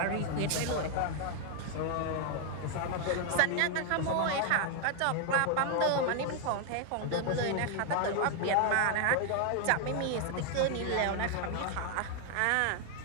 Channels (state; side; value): different; both; correlation 0.00